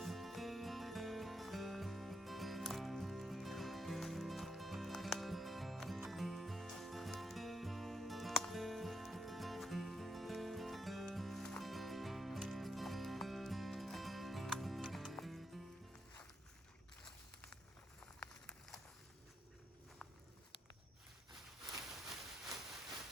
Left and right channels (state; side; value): normal; both; correlation 0.80